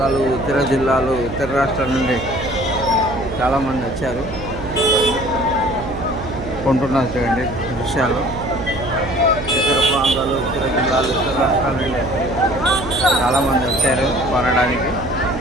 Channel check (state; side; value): noise; right; hum, 9 dB below the sound